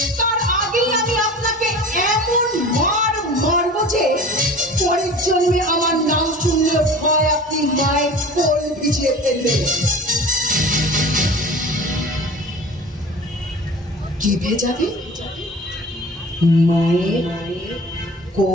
তার আগেই আমি আপনাকে এমন মার মারবো যে পরের জন্মে আমার নাম শুনলে ভয় আপনি মায়ের কোল ভিজিয়ে ফেলবেন। কি ভেজাবে? মায়ের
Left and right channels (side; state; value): both; normal; correlation 0.39